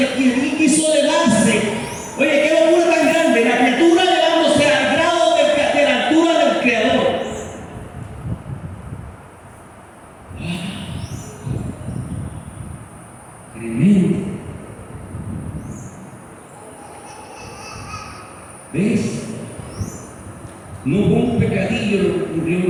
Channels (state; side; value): identical; both; correlation 1.00